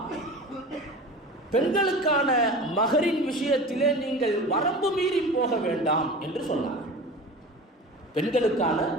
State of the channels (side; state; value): both; normal; correlation 0.35